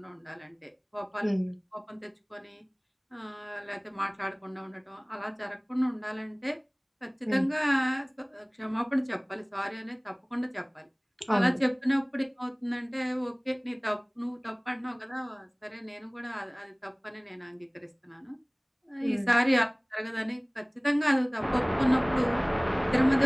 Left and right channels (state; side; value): identical; both; correlation 1.00